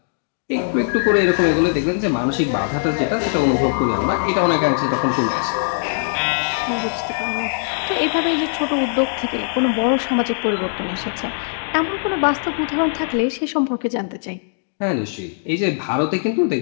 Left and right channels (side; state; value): right; silent; digital silence